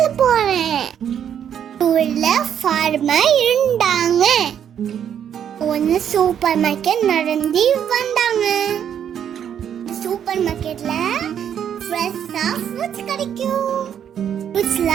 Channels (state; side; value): quieter; left; 9.0 dB